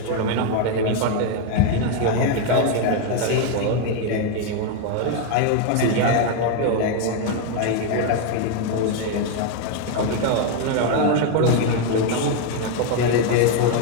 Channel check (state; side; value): different; both; correlation 0.01